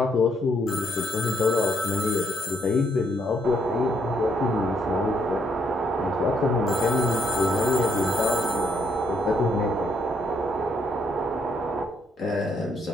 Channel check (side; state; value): both; normal; correlation 0.72